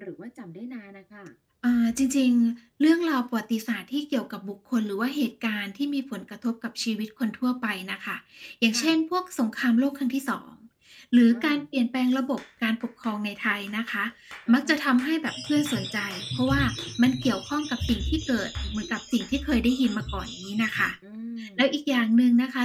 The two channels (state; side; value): identical; both; correlation 1.00